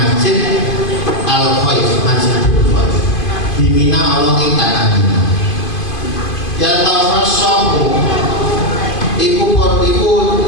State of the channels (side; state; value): right; late; 2.5 ms